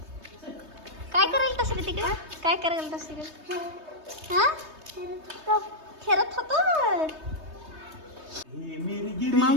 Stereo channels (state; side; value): late; left; 3.2 ms